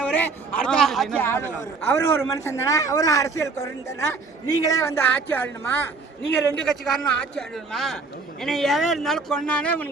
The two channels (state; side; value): quieter; left; 4.2 dB